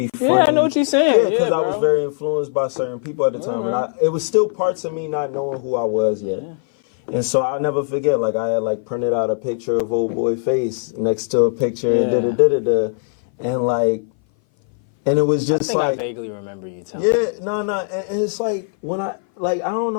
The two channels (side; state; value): right; silent; 58 dB below the other